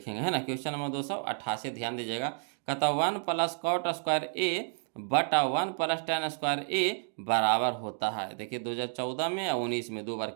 है ना। क्वेश्चन नंबर 288 ध्यान दीजिएगा। कहता 1 + cot स्क्वायर ए बटा 1 + tan स्क्वायर ए बराबर होता है। देखिए 2014 में और 19 में 2 बार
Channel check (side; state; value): left; silent; 57 dB below the other